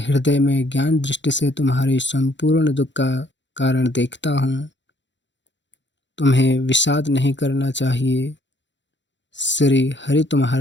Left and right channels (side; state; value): right; late; 0.53 ms